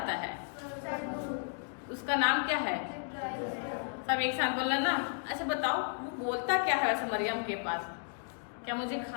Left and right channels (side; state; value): right; silent; 55 dB below the other